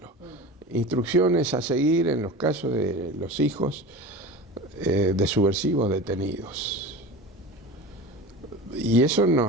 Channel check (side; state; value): both; normal; correlation 0.32